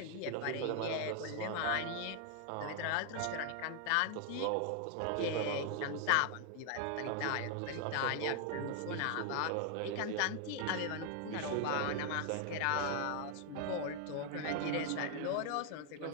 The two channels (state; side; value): different; both; correlation 0.00